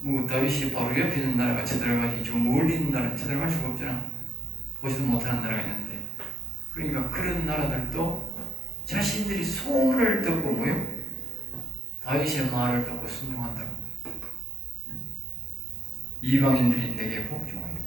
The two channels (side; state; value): both; normal; correlation 0.73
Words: 뭐 다윗이 바로 옆에 있는 나라가 쳐들어가지 저 멀리 있는 나라는 쳐들어갈 수가 없잖아. 보지도 못하는 나라가 있는데. 그러니까 그런 나라들도 자신들이 소문을 듣고 뭐요? 다윗의 말을 듣고 순종한다고. 이방인들이 내게